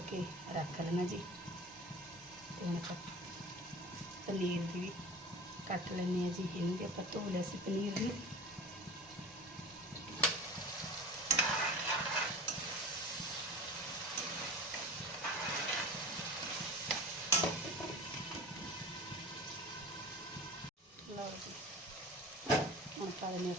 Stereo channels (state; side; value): normal; both; correlation 0.35